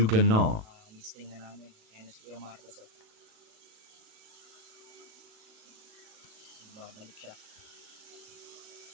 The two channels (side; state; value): left; late; 37 ms